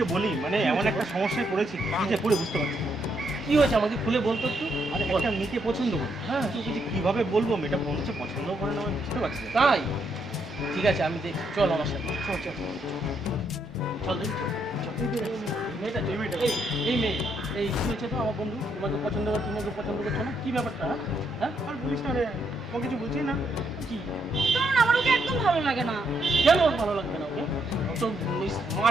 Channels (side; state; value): both; normal; correlation 0.76